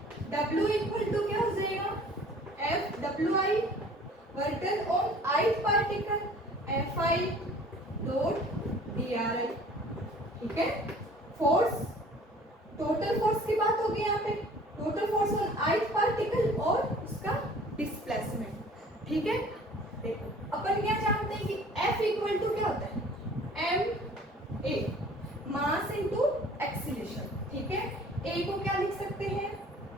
W इक्वल टू क्या हो जाएगा, F WI work done on ith particle FI dot DRI। ठीक है, फोर्स, टोटल फोर्स की बात होगी यहाँ पे, total force on ith particle और उसका डिस्प्लेसमेंट। ठीक है, देखो अपन क्या जानते हैं कि F इक्वल टू क्या होता है, ma, मास इनटू एक्सीलरेशन। ठीक है, A को क्या लिख सकते हैं,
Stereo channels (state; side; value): normal; both; correlation 0.50